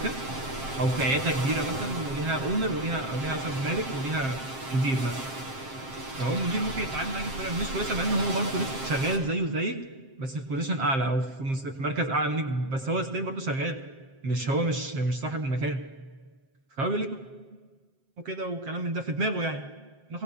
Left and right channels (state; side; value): late; left; 7.5 ms